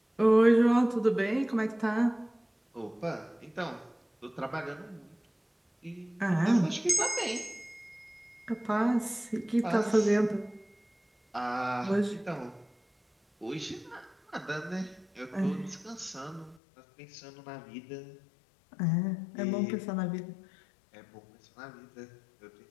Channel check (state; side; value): drops out; right; at 16.6 s